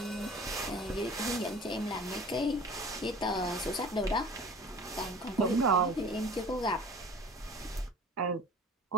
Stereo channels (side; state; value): both; normal; correlation 0.44